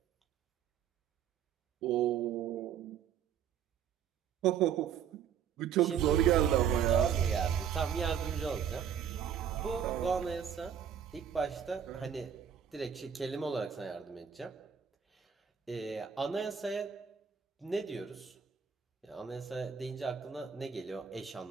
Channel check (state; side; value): quieter; left; 8.3 dB